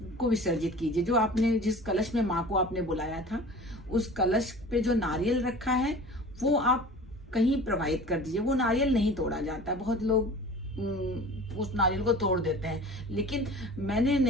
को विसर्जित कीजिए। जो आपने जिस कलश में माँ को आपने बुलाया था उस कलश पे जो नारियल रखा है वो आप कहीं प्रवाहित कर दीजिए। वो नारियल नहीं तोड़ा जाता, बहुत लोग उस नारियल को तोड़ देते हैं, लेकिन मैंने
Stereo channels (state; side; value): normal; both; correlation 0.41